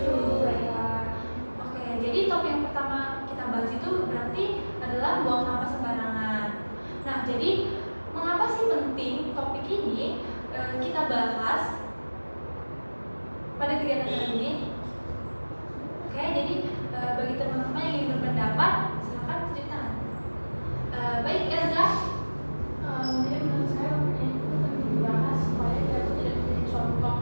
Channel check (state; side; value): inverted; both; correlation -1.00